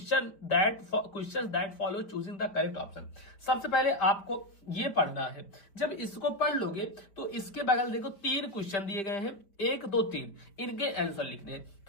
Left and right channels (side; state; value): right; late; 5.1 ms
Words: that follow choosing the correct option. सबसे पहले आपको ये पढ़ना है। जब इसको पढ़ लोगे तो इसके बगल देखो 3 क्वेश्चन दिए गए हैं, 1 2 3, इनके आंसर लिखने हैं।